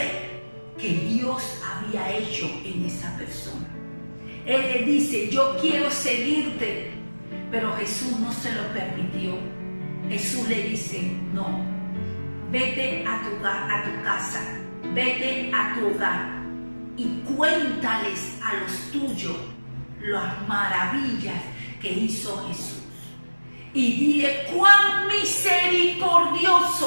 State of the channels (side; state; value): both; inverted; correlation -1.00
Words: que Dios había hecho en esa persona. Él le dice: yo quiero seguirte, pero Jesús no se lo permitió. Jesús le dice: no, vete a tu casa, vete a tu hogar y cuéntales a los tuyos las maravillas que hizo Jesús. Y dile cuán